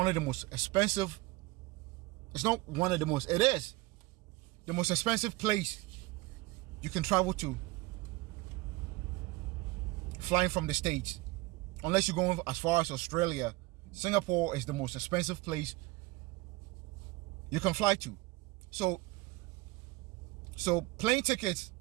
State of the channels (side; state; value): left; quieter; 20.9 dB